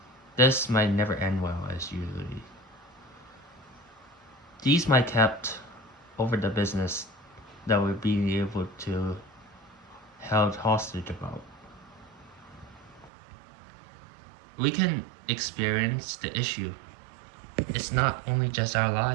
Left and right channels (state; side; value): drops out; left; at 13.1 s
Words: this might never end well as usually. These might kept over the business that we're being able to held hostage about. We can experience the issue. It's not only just our